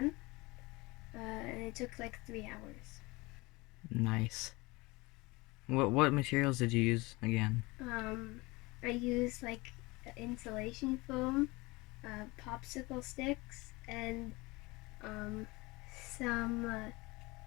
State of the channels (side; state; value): right; quieter; 23.5 dB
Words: and it took like 3 hours. Nice. What materials did you use again? I used like insulation foam, popsicle sticks, and some